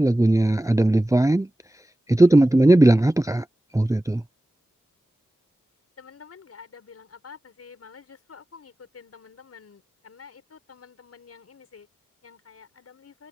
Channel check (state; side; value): normal; both; correlation 0.96